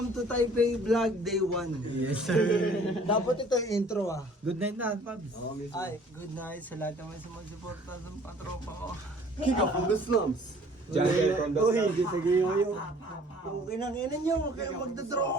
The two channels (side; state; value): both; normal; correlation 0.54